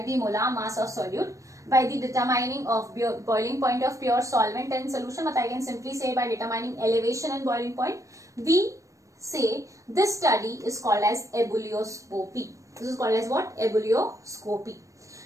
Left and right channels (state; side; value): late; left; 0.16 ms